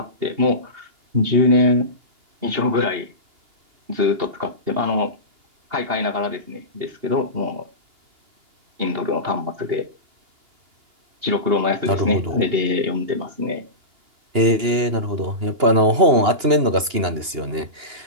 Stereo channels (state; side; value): late; left; 2.9 ms